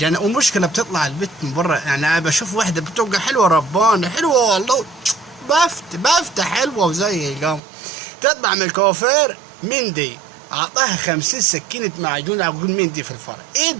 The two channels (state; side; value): drops out; left; at 7.6 s